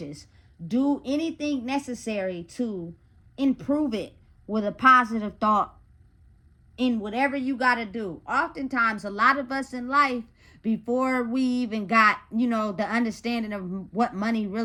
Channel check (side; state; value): both; identical; correlation 1.00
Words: do anything necessary to improve it with a positive thought in whatever you got to do. Oftentimes, a lot of us in life, before we even got, the understanding of what money